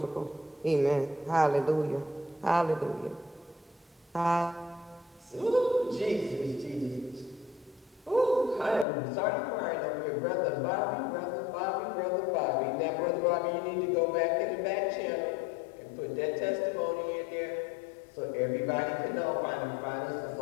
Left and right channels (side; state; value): right; drops out; at 8.8 s